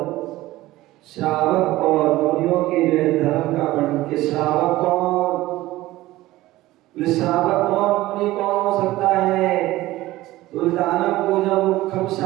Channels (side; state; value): left; quieter; 17.1 dB